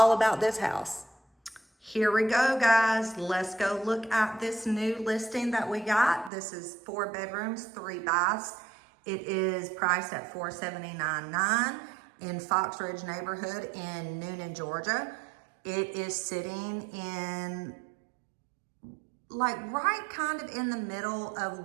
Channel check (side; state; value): left; drops out; at 6.3 s